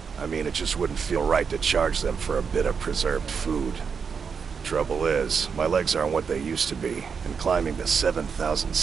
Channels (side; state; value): left; quieter; 6.1 dB